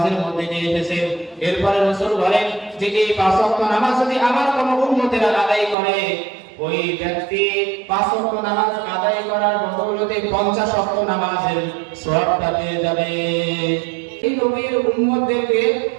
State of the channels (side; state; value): left; drops out; at 5.8 s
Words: মধ্যে নিয়ে এসেছেন। এরপরে রাসূল বলেন যে এই 5 ওয়াক্ত নামাজ যদি আমার কোনো উম্মতেরা আদায় করে, ওই ব্যক্তি 5 ওয়াক্ত নামাজ আদায় করার বদৌলতে 50 ওয়াক্ত নামাজের সওয়াবটা পেয়ে যাবে। এই নবীর উম্মতদেরকে